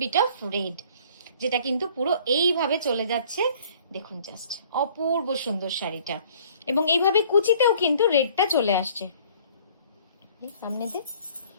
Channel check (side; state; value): both; inverted; correlation -0.55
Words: bit of red, যেটা কিন্তু পুরো এইভাবে চলে যাচ্ছে। দেখুন জাস্ট অপূর্ব সুন্দর শাড়িটা, এবং এইভাবে কুচিতেও কিন্তু রেডটা চলে আসছে সামনে দিয়ে।